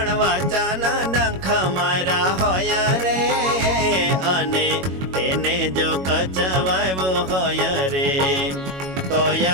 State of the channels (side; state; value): left; late; 22 ms